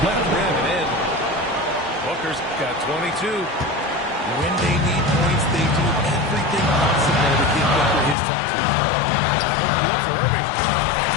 left rim and in. Booker's got 22. When they need points, they do everything possible to get Booker his touches. Look for Irving.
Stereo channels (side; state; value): right; drops out; at 8.2 s